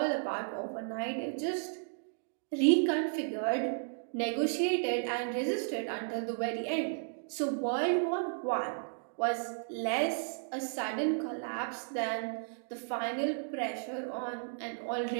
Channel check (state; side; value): silent; left; digital silence